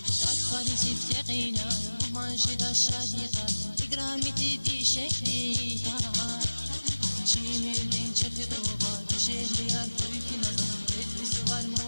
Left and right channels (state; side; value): inverted; both; correlation -1.00